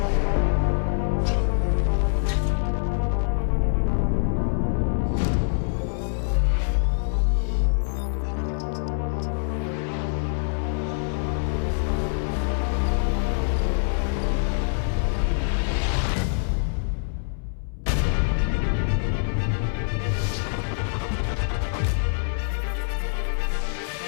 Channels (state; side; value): silent; right; 62 dB below the other